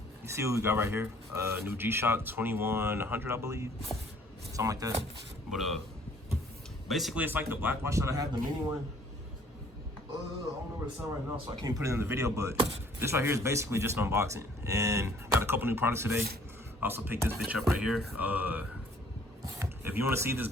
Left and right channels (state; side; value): normal; both; correlation 0.58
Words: see what we got right here? New G-Shock 2100, I believe, something like that. But basically, it's like the black watch that I have, the mini one. I don't know where it's at right now, so I can't put it in the video. But this right here is basically just an unboxing, and got a couple new products today. I also picked this bitch up right here. If you want to see this,